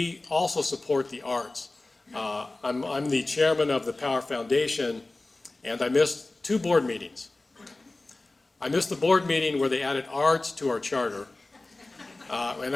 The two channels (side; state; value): right; quieter; 3.0 dB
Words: also support the arts. I'm the chairman of the Power Foundation, and I missed 2 board meetings. I missed the board meeting where they added arts to our charter.